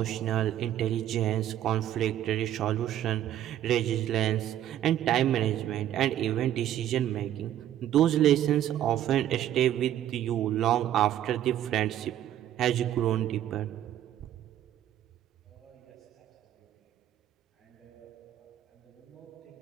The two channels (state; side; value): quieter; left; 11.8 dB